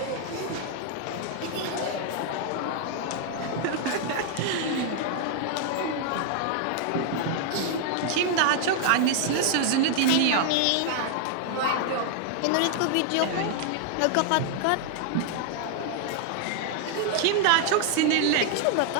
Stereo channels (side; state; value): both; different; correlation 0.00